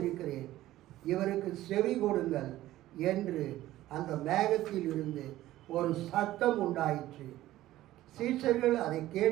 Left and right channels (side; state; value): left; quieter; 15.1 dB